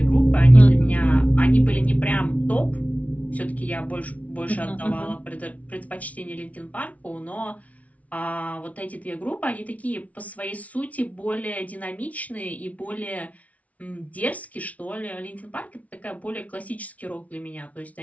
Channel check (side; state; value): right; late; 0.068 ms